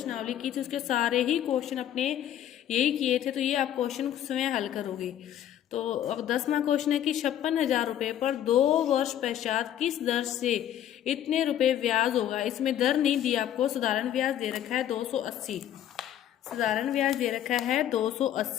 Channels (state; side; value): quieter; right; 11.0 dB